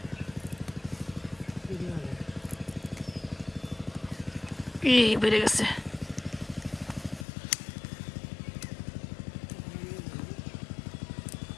এই বেড়ে গেছে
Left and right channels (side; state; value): right; drops out; at 7.2 s